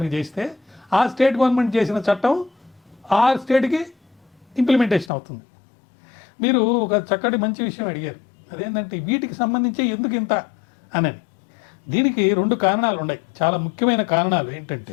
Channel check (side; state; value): right; drops out; at 5.1 s